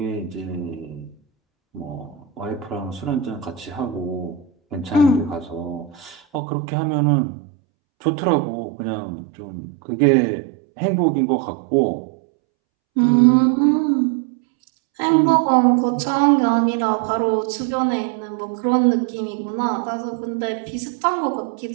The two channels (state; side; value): drops out; left; at 6.4 s